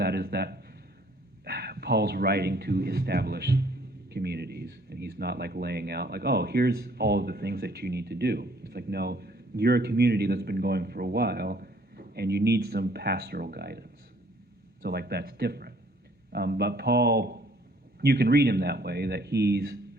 is that Paul's writing to establish communities, and he's not like laying out like, oh, here's all of the things that you need to do. It's like, no, you're a community that's been going for a while, and you need some pastoral guidance. So like that's different. But Paul, you can read him that way, that he's,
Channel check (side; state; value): both; normal; correlation 0.60